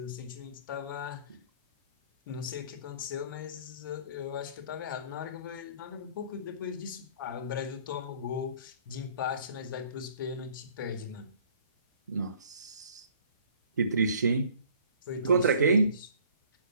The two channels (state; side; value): inverted; both; correlation -0.55